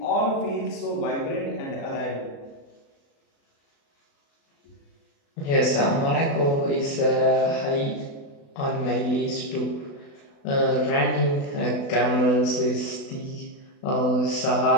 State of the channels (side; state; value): right; late; 36 ms